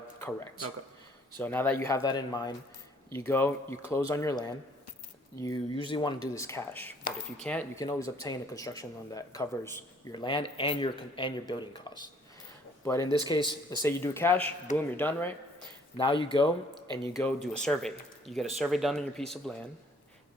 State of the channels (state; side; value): normal; both; correlation 0.60